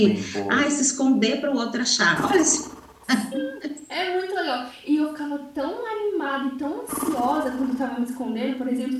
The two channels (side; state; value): both; identical; correlation 1.00